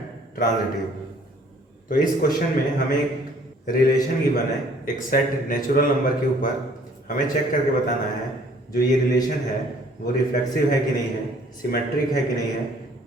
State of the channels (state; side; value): normal; both; correlation 0.58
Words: transitive. तो इस question में हमें एक relation given है, एक set natural number के ऊपर हमें चेक करके बताना है जो ये रिलेशन है वो रिफ्लेक्सिव है कि नहीं है, सिमेट्रिक है कि नहीं है,